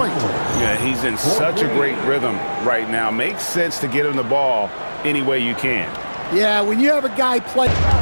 Yeah, he's in such a great rhythm right now. Makes sense to get him the ball any way you can. Yeah, when you have a guy play.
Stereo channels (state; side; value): inverted; both; correlation -1.00